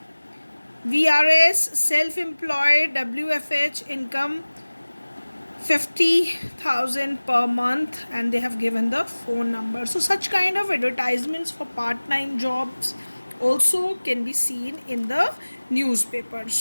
VRS, self-employed, WFH, income 50,000 per month, and they have given the phone number. So such kind of advertisements for part-time jobs also can be seen in the newspaper.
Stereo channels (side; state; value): both; inverted; correlation -1.00